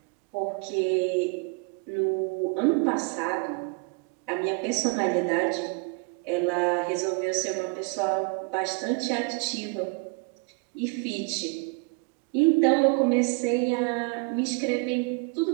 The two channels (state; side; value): quieter; left; 32.2 dB